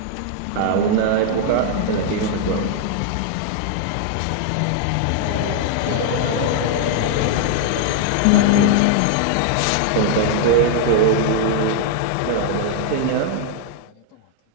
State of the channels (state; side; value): different; both; correlation -0.01